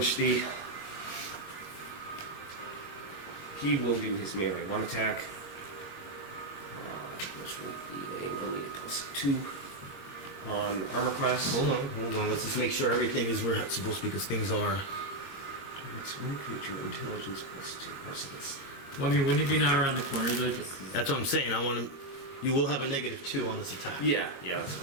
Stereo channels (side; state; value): right; late; 22 ms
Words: he will do his melee 1 attack. Which will be only a +2 on armor class. Hold on. Let's just make sure everything is where it's supposed to be, because things are. It's one creature, intelligence +2. Oh, so that's Well, I mean, wouldn't it be now around the corner though? Just That's what I'm saying. I want to. You will have a -2 on this attack. yeah, that's